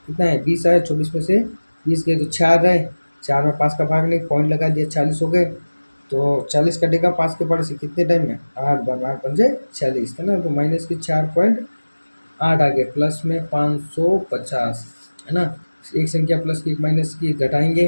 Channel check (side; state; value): both; inverted; correlation -1.00